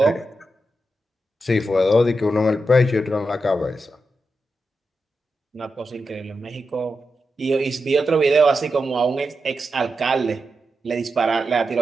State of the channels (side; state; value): both; normal; correlation 0.88